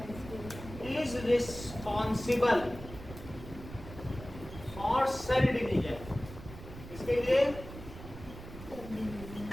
is responsible for cell division. इसके लिए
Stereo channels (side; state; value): right; noise; rumble, 13 dB below the sound